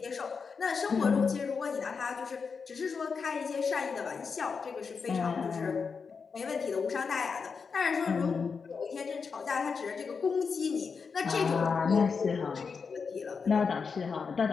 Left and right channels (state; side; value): quieter; right; 5.4 dB